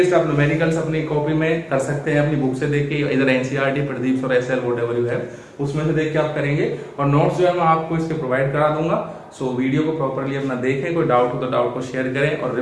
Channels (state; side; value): identical; both; correlation 1.00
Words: आप न्यूमेरिकल्स अपनी कॉपी में कर सकते हैं, अपनी बुक से देख के, इधर एनसीईआरटी, प्रदीप और एसएल व्हाटएवर यू हैव, उसमें से देख के आप करेंगे। और नोट्स जो है मैं आपको इसके प्रोवाइड करा दूंगा। सो वीडियो को प्रॉपरली अपना देखें, कोई डाउट हो तो डाउट को शेयर करें और